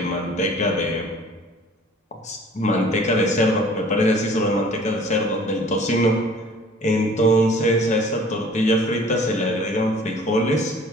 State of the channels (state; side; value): normal; both; correlation 0.50